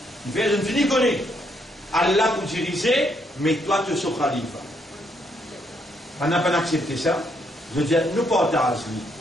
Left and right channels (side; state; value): both; normal; correlation 0.73